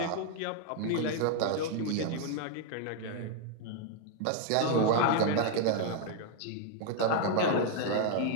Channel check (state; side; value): different; both; correlation 0.00